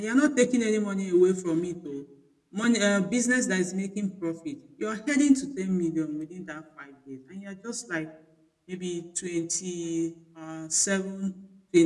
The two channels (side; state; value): both; identical; correlation 1.00